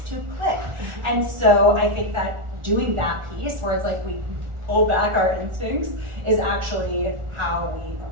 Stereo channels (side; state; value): left; late; 1.4 ms